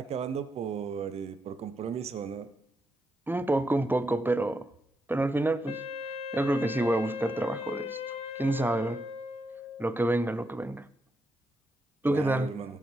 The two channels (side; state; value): both; normal; correlation 0.82